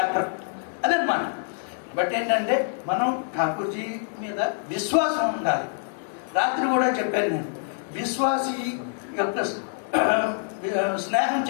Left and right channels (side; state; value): right; silent; digital silence